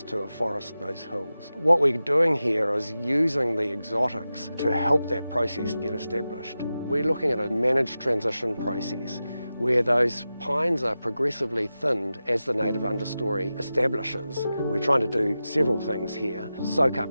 to afforest those hills. What we're doing here is using the exotics to help that process get established. We're looking at a managed transition process where those pines are progressively thinned as the native understory establishes. We're trying to do several things here. Soak up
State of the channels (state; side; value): inverted; both; correlation -0.93